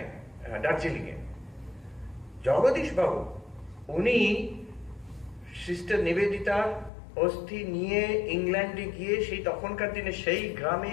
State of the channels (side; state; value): right; drops out; at 6.9 s